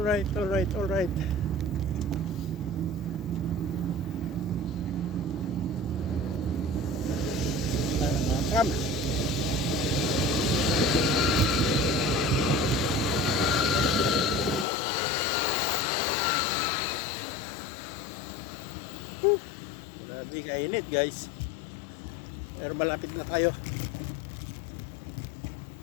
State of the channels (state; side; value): drops out; right; at 14.7 s